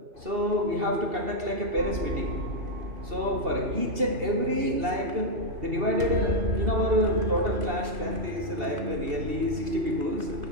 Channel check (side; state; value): left; late; 2.7 ms